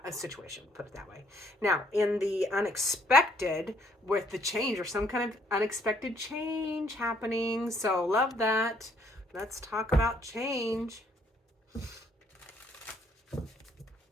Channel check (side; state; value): both; normal; correlation 0.67